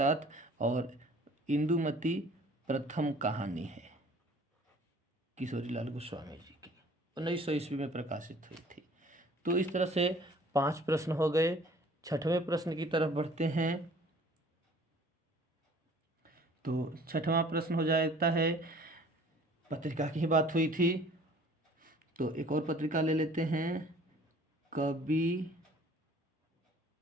और इंदुमती प्रथम कहानी है किशोरीलाल गोस्वामी जी की, 1900 ईस्वी में प्रकाशित हुई थी। तो इस तरह से 5 प्रश्न हो गए। 6वें प्रश्न की तरफ बढ़ते हैं। तो 6वां प्रश्न हो जाता है, पत्रिका की ही बात हुई थी तो एक और पत्रिका ले लेते हैं, कवि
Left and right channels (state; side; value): normal; both; correlation 0.52